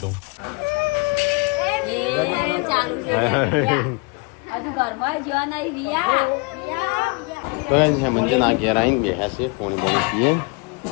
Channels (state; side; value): quieter; right; 29.3 dB